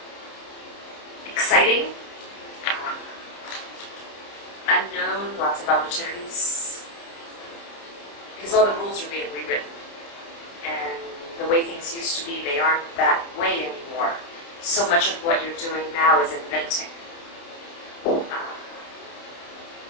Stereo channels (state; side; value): late; right; 29 ms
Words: Exciting, unknown, lots of opportunities, because all the rules are being rewritten, and the way things used to be, they aren't that way anymore. So much of what you're doing now is inventing.